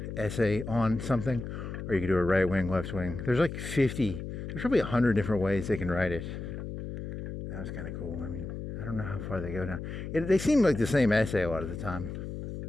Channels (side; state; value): left; noise; hum, 7 dB below the sound